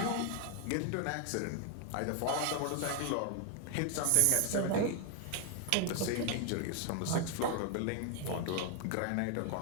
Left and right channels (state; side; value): different; both; correlation 0.01